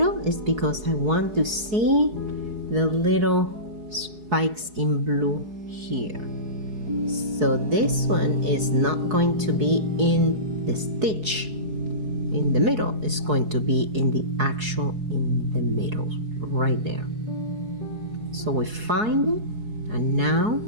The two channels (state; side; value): late; left; 4.7 ms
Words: is because I want to see the little spikes in blue here. So this one is not going to be in the stitch in the middle. It's going to be in the actual in the middle right there. So we find it, and now